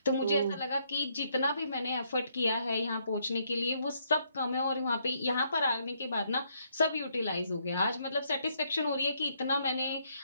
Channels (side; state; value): both; inverted; correlation -0.72